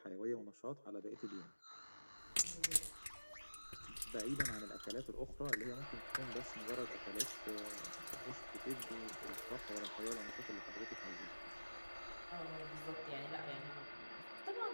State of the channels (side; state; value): both; inverted; correlation -1.00